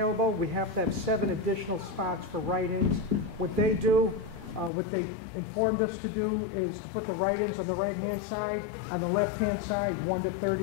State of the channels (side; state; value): right; drops out; at 4.7 s